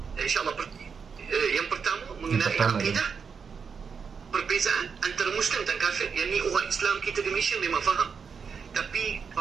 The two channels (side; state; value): left; quieter; 6.0 dB